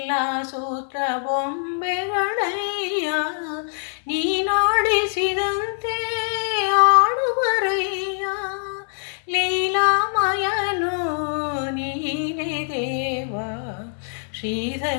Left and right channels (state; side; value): silent; right; digital silence